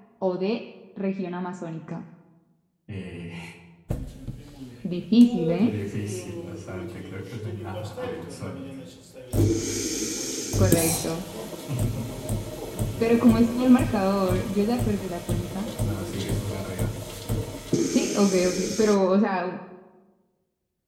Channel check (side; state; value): both; identical; correlation 1.00